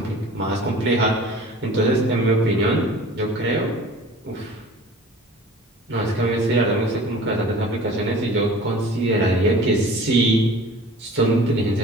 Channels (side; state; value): both; normal; correlation 0.43